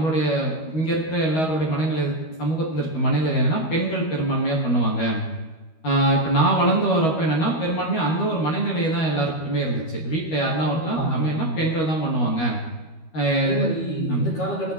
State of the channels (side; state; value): right; late; 13 ms